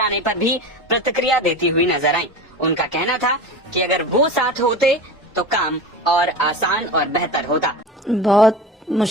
आने पर भी प्रतिक्रिया देती हुई नजर आई। उनका कहना था कि अगर वो साथ होते तो काम और आसान और बेहतर होता। बहुत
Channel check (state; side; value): normal; both; correlation 0.30